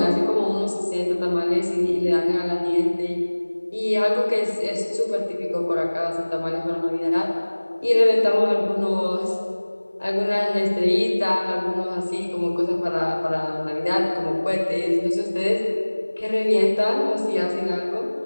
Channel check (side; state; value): both; inverted; correlation -1.00